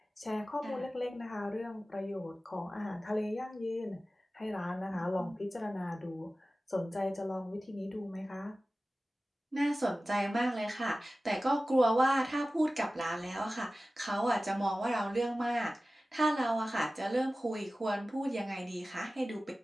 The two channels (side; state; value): both; normal; correlation 0.96